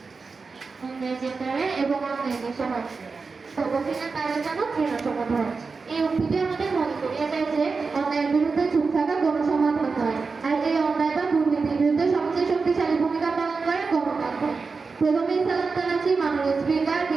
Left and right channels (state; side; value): quieter; left; 4.5 dB